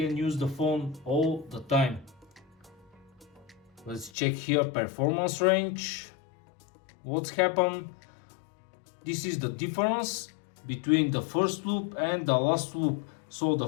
use the phone all the time. Let's check here performance range. What's happened? This is the difference between the first loop and the last loop. So the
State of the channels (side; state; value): right; drops out; at 4.1 s